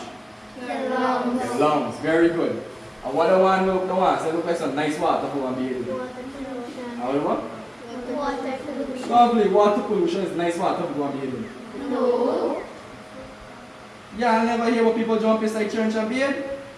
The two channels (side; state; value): both; identical; correlation 1.00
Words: The lungs. The lungs. Very good. And what the one look like some nice water for one baby. Water pollution. How what? Water pollution. Lovely. Water pollution is nice water for one baby. No. Yeah, I never hear what people jump inside church and bathe.